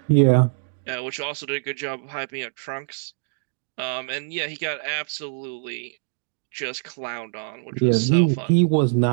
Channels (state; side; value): silent; left; 62 dB below the other